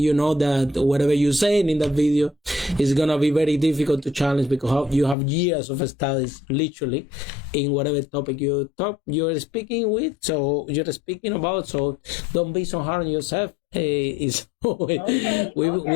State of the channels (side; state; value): right; drops out; at 5.2 s